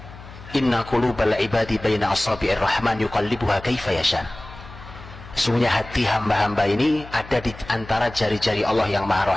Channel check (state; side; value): noise; left; hum, 17 dB below the sound